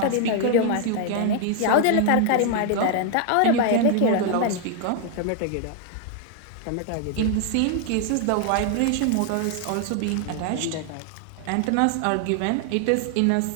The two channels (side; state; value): both; different; correlation 0.00